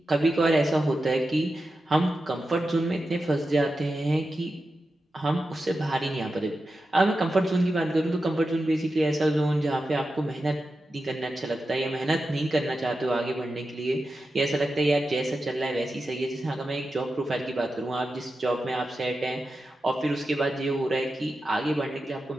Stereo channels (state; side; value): normal; both; correlation 0.91